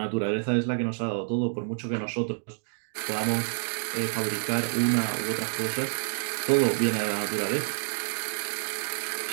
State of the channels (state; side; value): silent; left; digital silence